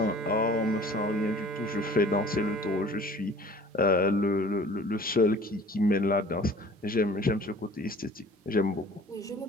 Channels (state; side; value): normal; both; correlation 0.48